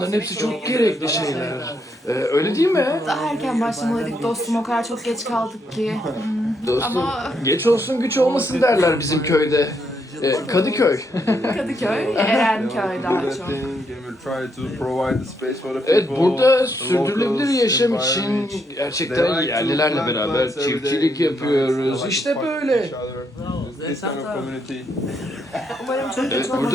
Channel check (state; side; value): normal; both; correlation 0.76